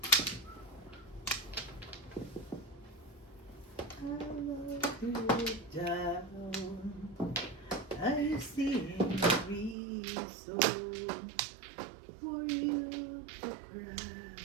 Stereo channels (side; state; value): left; drops out; at 9.8 s